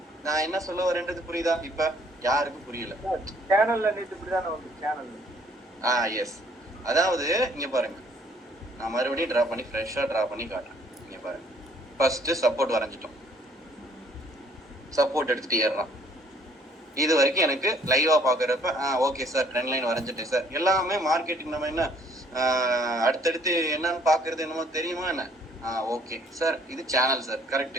நான் என்ன சொல்ல வரேன்றது? புரியுதா? இப்ப யாருக்கும் புரியல. சேனல்ல நேத்து இப்படிதானே வந்து சேனல். எஸ். அதாவது இங்க பாருங்க, நான் மறுபடியும் டிரா பண்ணி ஃப்ரெஷ்ஷா டிரா பண்ணி காட்டுறேன். இங்க பாருங்க, ஃபர்ஸ்ட் சப்போர்ட் வரைஞ்சிட்டோம், சப்போர்ட் எடுத்துட்டு ஏறலாம். இது வரைக்கும் எனக்கு லைவா பாக்குறப்ப ஓகே சார், ட்ரெண்ட் லைன் வரைஞ்சிட்டேன் சார். எல்லாமே மார்க்கெட்டிங் நம்ம என்ன அடுத்தடுத்து என்னன்னு பாக்குறது என்னமோ தெரியுமா என்ன? ஓகே சார், இது சேனல் சார், கரெக்ட்,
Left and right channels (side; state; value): both; normal; correlation 0.62